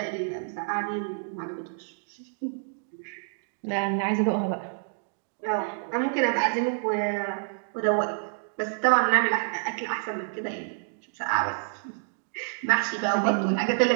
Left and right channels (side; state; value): left; silent; digital silence